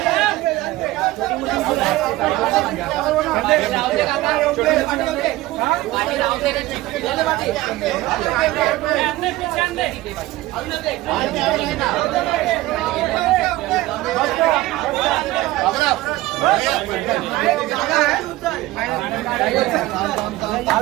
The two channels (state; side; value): quieter; left; 17.7 dB